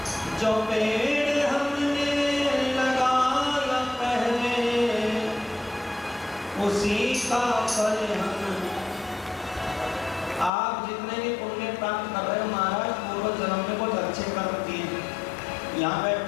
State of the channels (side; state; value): right; drops out; at 10.5 s